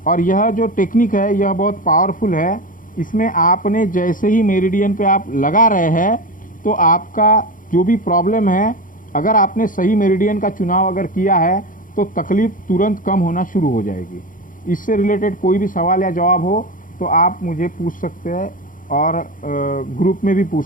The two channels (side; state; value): right; late; 0.39 ms